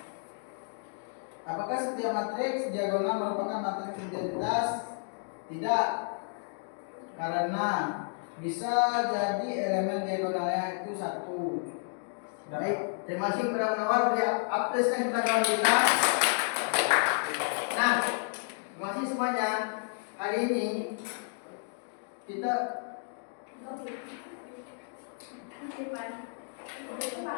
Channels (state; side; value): silent; right; 57 dB below the other